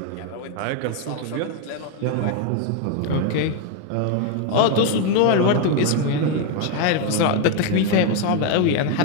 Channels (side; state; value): both; different; correlation 0.01